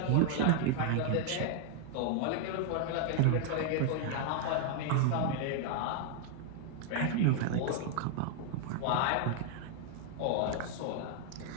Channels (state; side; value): different; both; correlation 0.00